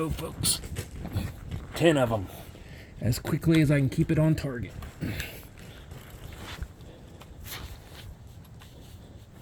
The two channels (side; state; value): both; identical; correlation 1.00